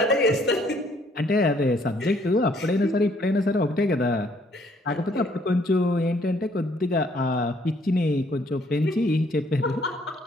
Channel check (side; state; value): both; normal; correlation 0.65